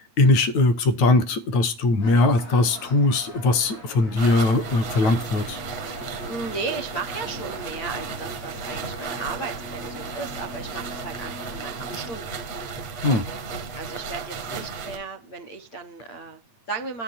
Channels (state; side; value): late; right; 9.1 ms